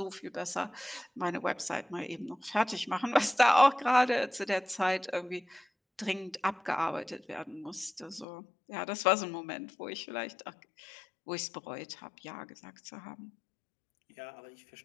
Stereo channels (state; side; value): drops out; right; at 8.2 s